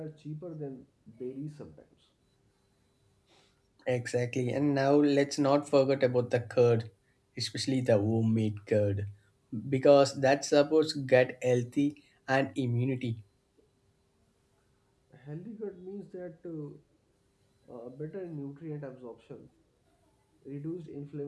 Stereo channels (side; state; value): both; identical; correlation 1.00